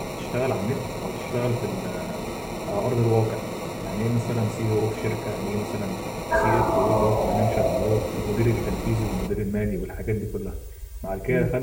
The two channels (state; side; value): identical; both; correlation 1.00